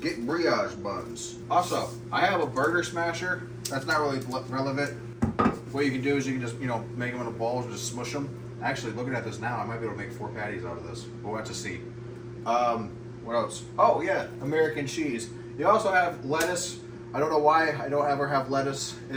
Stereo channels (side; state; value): both; identical; correlation 1.00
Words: Get brioche buns. Also, I have a burger smasher. That's not really relevant. What you can do is you can just, make them into balls and just smush them. Actually, looking at this now, I might be able to make 4 patties out of this. We'll have to see. What else? Oh, yeah, American cheese. You also have lettuce. I don't know why I don't ever have lettuce